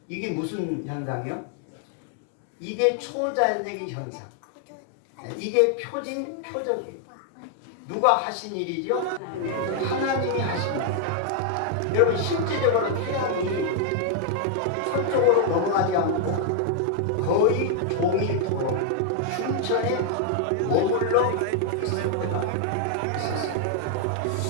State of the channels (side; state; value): both; different; correlation 0.00